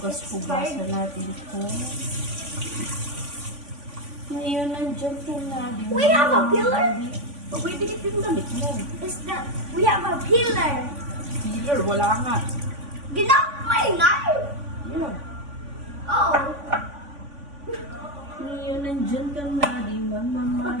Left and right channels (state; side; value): late; left; 3.5 ms